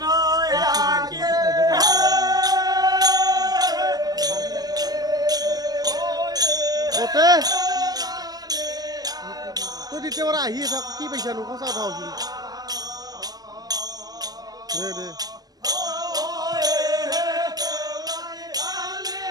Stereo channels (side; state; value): left; late; 0.19 ms